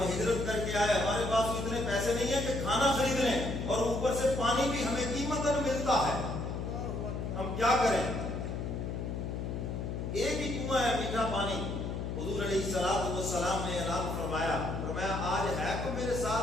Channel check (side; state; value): left; noise; hum, 4 dB below the sound